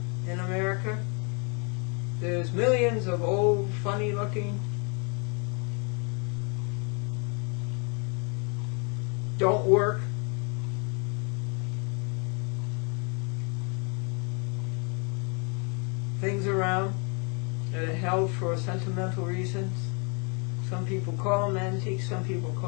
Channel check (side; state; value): right; quieter; 35.8 dB